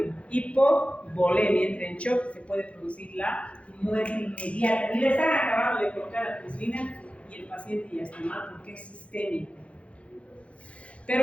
hipovolemia, entra en shock, se puede producir la muerte inmediata. Y le están acabando de colocar la penicilina y el paciente ya está mal porque es sistémico.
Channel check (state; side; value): late; right; 0.062 ms